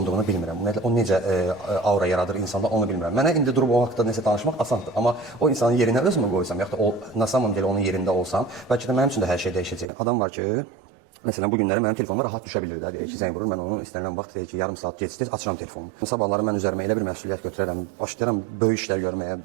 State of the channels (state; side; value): drops out; left; at 9.9 s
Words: bilmirəm. Ümumiyyətlə o necə aura yaradır insanda onu bilmirəm. Mənə indi durub o haqqda nəsə danışmaq asandır. Amma o insanın yerinə özümü qoysam, yaxud da o na samом деле onun yerində olsam, bəlkə də mənim üçün də hər şey dəyişəcək. Adam var ki, məsələn, bu günləri mənim telefonuma rahat düşə bilir də. Deyir ki, zəng vurur, mən onu istənilən vaxt deyir ki, yarım saat gecikdir, açıram telefonumu. Sabahları mən üzərimə elə bir məsuliyyət götürərəm, başlayıram böyük işlər görməyə,